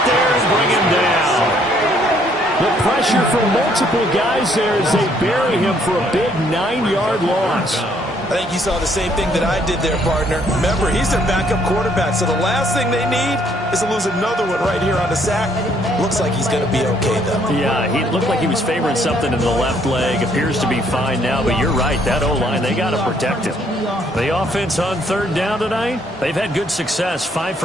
there and bring him down. The pressure from multiple guys there as they bury him for a big 9-yard loss. I think you saw the same thing that I did there, partner. Remember, he's their backup quarterback, so the last thing they need is to lose another one right here on the sack. Looks like he's going to be okay, though. Yeah, he looked like he was favoring something in the left leg. Appears to be fine now, but you're right. That O-line, they got to protect him. The offense on 3rd down tonight, they've had good success, 5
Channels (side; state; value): both; normal; correlation 0.66